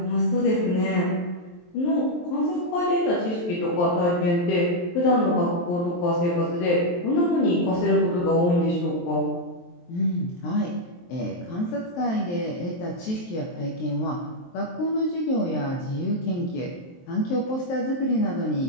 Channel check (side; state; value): right; late; 23 ms